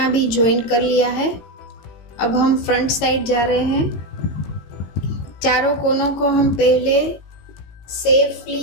भी जॉइन कर लिया है। अब हम फ्रंट साइड जा रहे हैं। चारों कोनों को हम पहले सेफली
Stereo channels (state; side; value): late; right; 18 ms